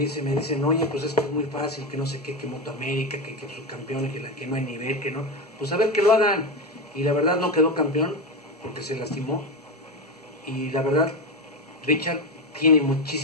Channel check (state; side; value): normal; both; correlation 0.16